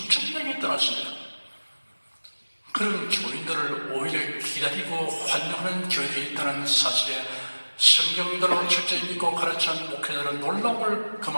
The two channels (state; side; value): inverted; both; correlation -1.00